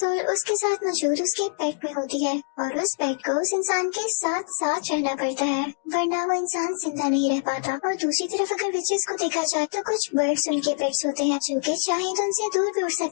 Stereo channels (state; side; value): silent; right; digital silence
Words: उसके साथ मौजूद उसके पेट में होती है और उस पेट को उस इंसान के साथ साथ रहना पड़ता है, वरना वो इंसान जिंदा नहीं रह पाता। और दूसरी तरफ अगर विचेस को देखा जाए तो कुछ बर्ड्स उनके पेट्स होते हैं जो कि चाहे तो उनसे दूर भी उड़